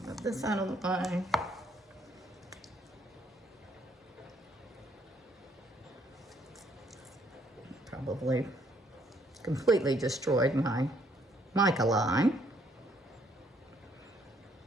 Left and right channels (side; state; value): both; normal; correlation 0.68